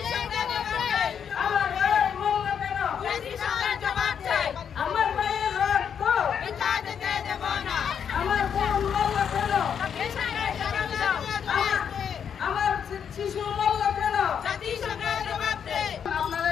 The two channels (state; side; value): quieter; right; 7.8 dB